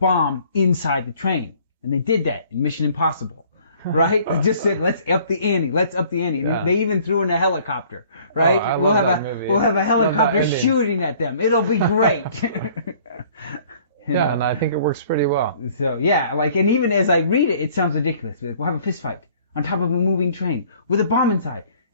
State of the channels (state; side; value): inverted; both; correlation -0.56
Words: inside the train. And they did that in Mission Impossible, right? They just said, let's up the ante. And they even threw in a helicopter, right? We'll have a helicopter shooting at them. It'll be great. And I think it works pretty well. So, and even as I read it, it sounds ridiculous. We'll have a fist fight on top of a moving train with a bomb inside,